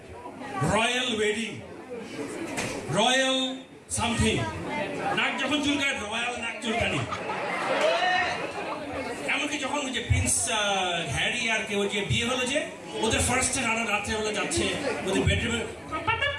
রয়্যাল ওয়েডিং, রয়্যাল সামথিং। নাক যখন চুলকায় রয়্যাল নাক চুলকানি। এমনকি যখন যে প্রিন্স হ্যারি আর কেউ যে বিয়ে হলো, যে ওদের ফার্স্ট রাত্রেবেলা যাচ্ছে ওদের বেডরুমে,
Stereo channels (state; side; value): identical; both; correlation 1.00